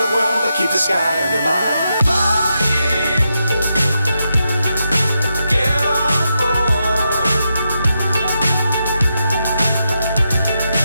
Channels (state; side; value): inverted; both; correlation -0.84